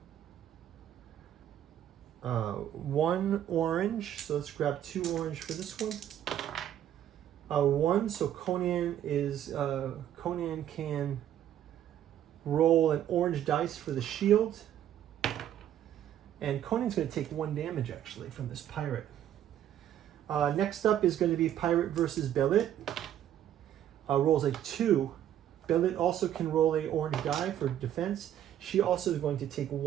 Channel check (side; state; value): left; quieter; 11.0 dB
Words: 1 orange. So let's grab 2 orange for this one. 1, so Conan can roll an orange dice for the shield. And Conan's going to take 1 damage, actually, from this pirate. Next up is going to be Pirate versus Belit. Rolls a 2. Belit also can roll a orange die for defense. She also is going to take